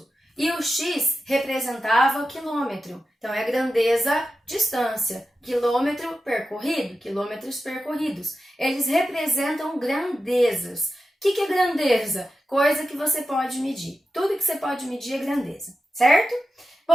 E o x representava quilômetro. Então, é grandeza, distância. Quilômetro percorrido, quilômetros percorridos. Eles representam grandezas. O que é grandeza? Coisa que você pode medir. Tudo que você pode medir é grandeza, certo?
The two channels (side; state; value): both; normal; correlation 0.91